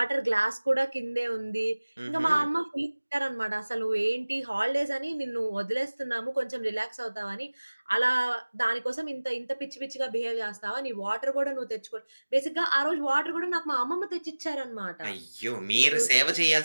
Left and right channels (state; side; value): inverted; both; correlation -1.00